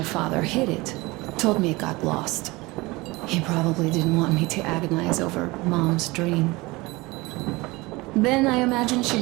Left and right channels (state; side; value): quieter; left; 22.6 dB